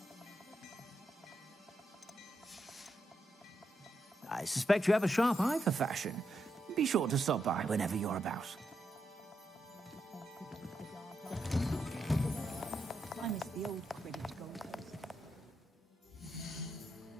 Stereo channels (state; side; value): normal; both; correlation 0.83